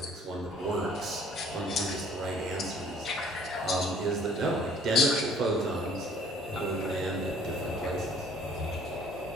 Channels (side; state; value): both; normal; correlation 0.56